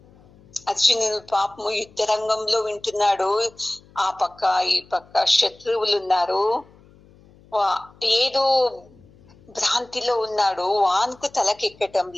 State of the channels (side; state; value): left; noise; hum, 27 dB below the sound